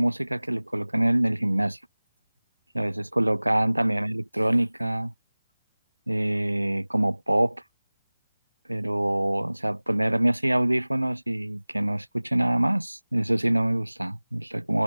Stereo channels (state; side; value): inverted; both; correlation -1.00